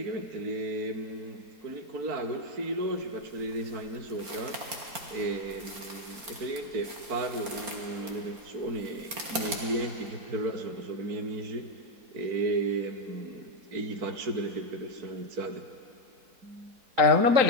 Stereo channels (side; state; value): left; late; 4.3 ms